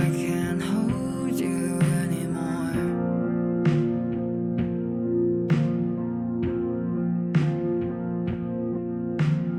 can't hold you anymore.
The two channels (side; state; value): both; identical; correlation 1.00